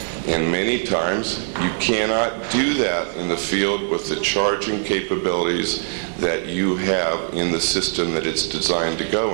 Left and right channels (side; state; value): left; silent; digital silence